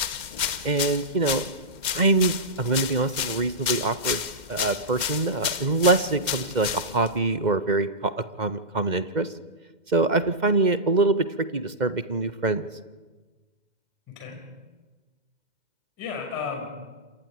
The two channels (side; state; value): left; late; 2.1 ms